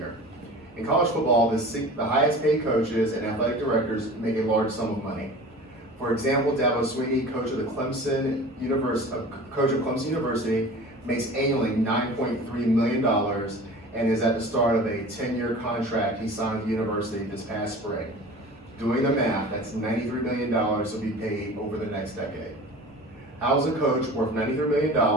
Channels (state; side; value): normal; both; correlation 0.39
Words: In college football, the highest paid coaches and athletic directors make a large sum of money. For example, Dabo Swinney, coach of Clemson University, makes annually $9.3 million and is at the start of a 10-year contract he signed with the university this past spring. Doing the math, that's $93 million will be paid over the next decade. How is a coach worth $93